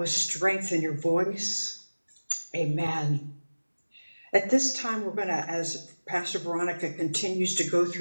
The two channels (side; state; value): both; inverted; correlation -1.00